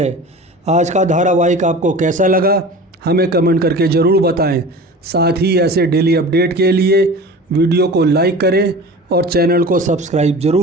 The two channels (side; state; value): both; normal; correlation 0.36